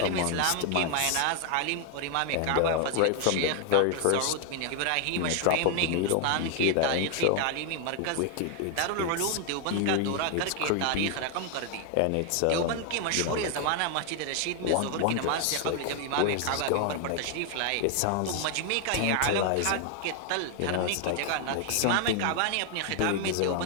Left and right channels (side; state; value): both; different; correlation 0.00